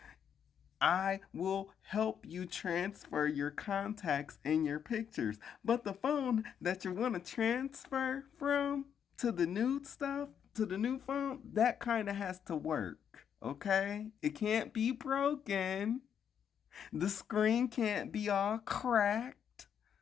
I will help you transfer your contacts and your pictures. But the phone that you want to transfer from to the new stuff, to the new phone, that kind of has to work. Okay? It can't be broken. The screen can't be all cracked.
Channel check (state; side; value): quieter; right; 8.3 dB